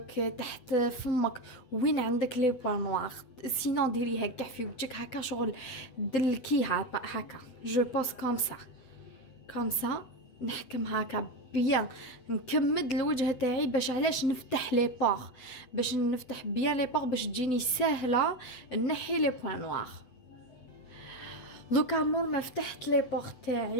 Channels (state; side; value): late; right; 8.0 ms